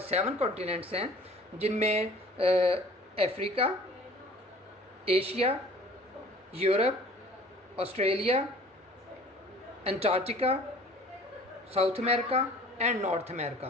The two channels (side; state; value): both; normal; correlation 0.49